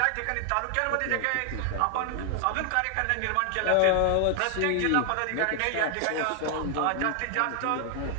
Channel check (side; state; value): both; different; correlation 0.00